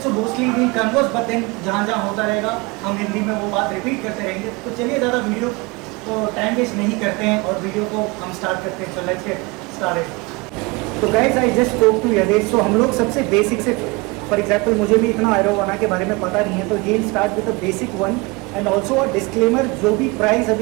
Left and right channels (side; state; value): left; quieter; 25.7 dB